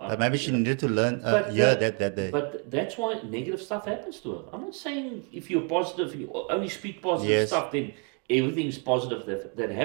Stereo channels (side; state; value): left; quieter; 37.4 dB